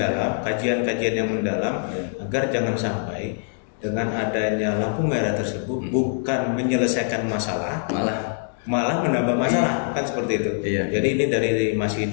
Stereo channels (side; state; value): right; silent; digital silence